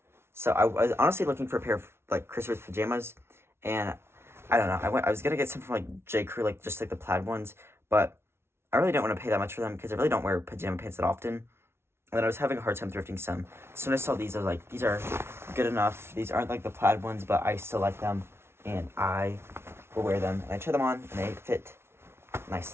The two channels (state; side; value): late; left; 0.12 ms